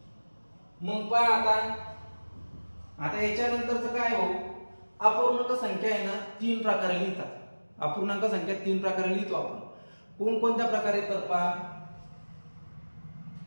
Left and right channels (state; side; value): inverted; both; correlation -1.00